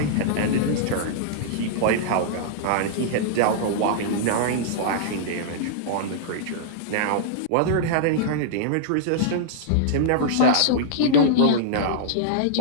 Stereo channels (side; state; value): both; different; correlation -0.02